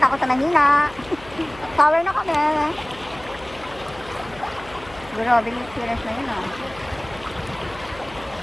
sa Manila. Power na kami. Grabe yung experience na yun, oh.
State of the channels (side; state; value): left; noise; hum, 20 dB below the sound